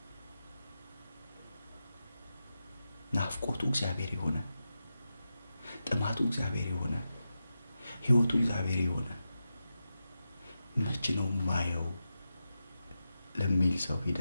ናፍቆቱ እግዚአብሔር የሆነ፣ ጥማቱ እግዚአብሔር የሆነ፣ ህይወቱ እግዚአብሔር የሆነ መች ነው ማየው ለሚል ሰው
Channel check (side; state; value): both; inverted; correlation -0.90